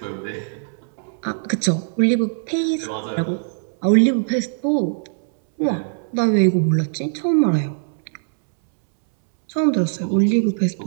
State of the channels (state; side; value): silent; left; 65 dB below the other